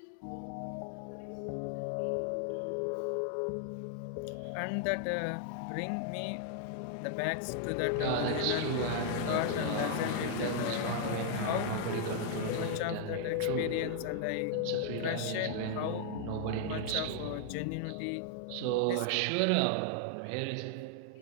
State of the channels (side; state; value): both; different; correlation 0.00